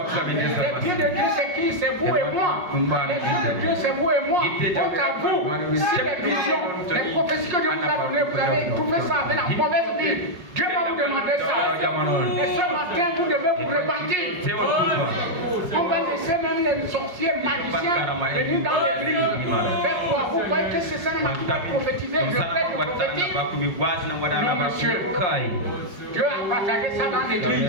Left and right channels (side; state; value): left; late; 5.5 ms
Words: Les pieds de Dieu, c'est qui? C'est vous et moi. Les pieds de Dieu, c'est vous et moi. Donc à vous. Si les visions, les prophéties que Dieu vous a données, vous avez trouvé ça avec la mauvaise vie. Dieu va vous demander ça. Et ce matin, vous devez vous repentir. On va laisser même les sorciers magiciens venir dans l'église. Faire quoi? Vous croyez que c'est ça qui va prophétiser? Je prête le prophétique. Non, monsieur. Dieu a partagé ça dans l'église.